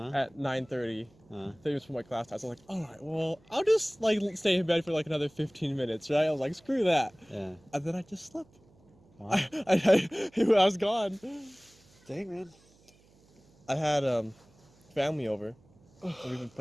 at 9:30. 30 minutes for my class time. So I was like, all right, well, I'll just like stay in bed for like another 15 minutes, right? I was like, screw that. Yeah. And then I just slept. Wow. I was gone. Dang, man. I had family over. And we've been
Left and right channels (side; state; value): right; noise; hum, 30 dB below the sound